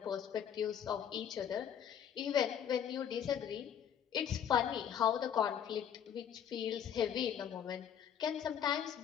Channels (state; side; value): quieter; right; 8.9 dB